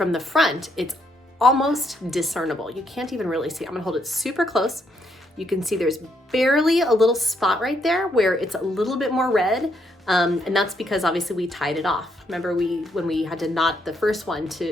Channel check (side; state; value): both; normal; correlation 0.75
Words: the front, it's almost discernible. You can't even really see. I'm gonna hold it super close. You can see there's barely a little spot right there where it's a little bit more red. And that's because obviously we tied it off. Remember when we had to knot the first one